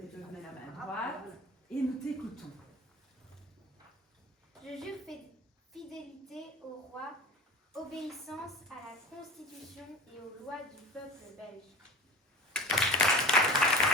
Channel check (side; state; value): both; normal; correlation 0.34